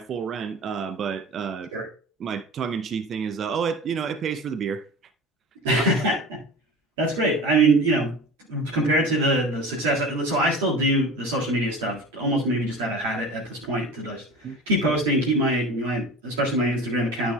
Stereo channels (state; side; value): normal; both; correlation 0.35